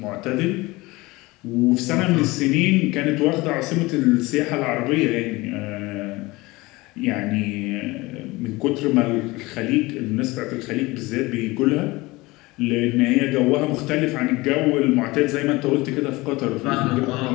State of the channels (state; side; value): quieter; right; 21.6 dB